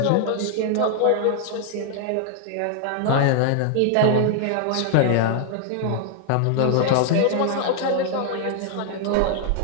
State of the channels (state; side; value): different; both; correlation 0.00